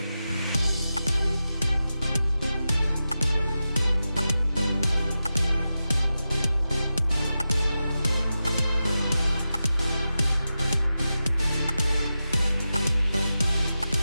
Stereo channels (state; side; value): inverted; both; correlation -0.92